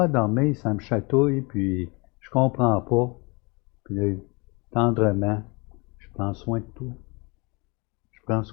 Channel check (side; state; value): right; quieter; 28.4 dB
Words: à dormir, ça me chatouille, puis je comprends pas. Puis là, tendrement, je prends soin de toi. Je prends